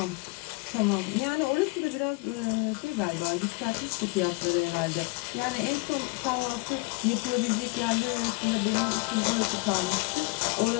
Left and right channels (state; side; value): quieter; right; 27.9 dB